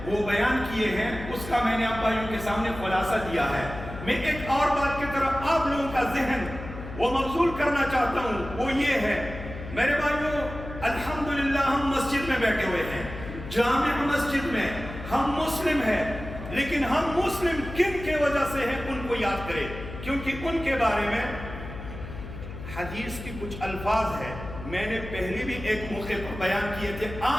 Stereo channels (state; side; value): noise; left; hum, 11 dB below the sound